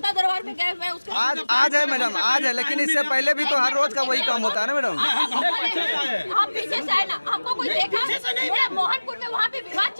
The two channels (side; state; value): both; inverted; correlation -1.00